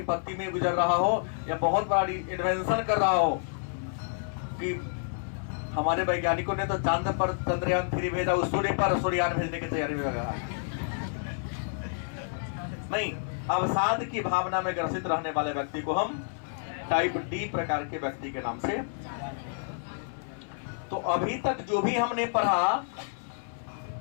में गुजर रहा हो, या बहुत बड़ी इन्वेंशन कर रहा हो, कि हमारे वैज्ञानिकों ने तो चांद पर चंद्रयान 3 भेजा, उस सूर्य पर सूर्ययान भेजने की तैयारी में लगा। नहीं, अवसाद की भावना में ग्रसित रहने वाले व्यक्ति को हम टाइप डी प्रकार के व्यक्ति के नाम से। तो अभी तक जो भी हमने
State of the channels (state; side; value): silent; right; 58 dB below the other